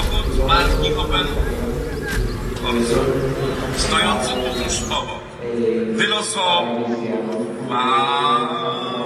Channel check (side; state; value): both; identical; correlation 1.00